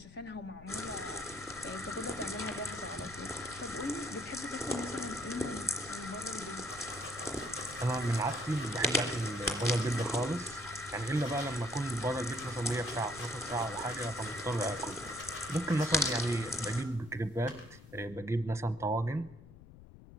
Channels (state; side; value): noise; left; rumble, 18 dB below the sound